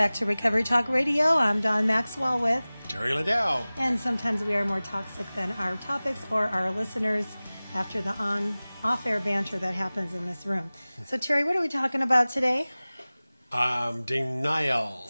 to Recovery Talk Radio. I'm Dawn Maxwell with Terry Liddell. And sometimes we are more toxic than our topics or our listeners after the off-air banter that happens in this room. So, Terry, what are we talking about today? Denial.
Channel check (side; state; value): both; inverted; correlation -0.99